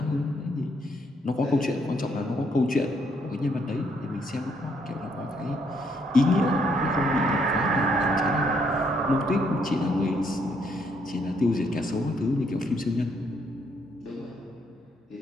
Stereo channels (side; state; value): both; normal; correlation 0.72